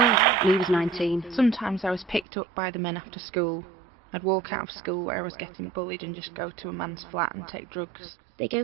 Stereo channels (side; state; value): left; drops out; at 2.2 s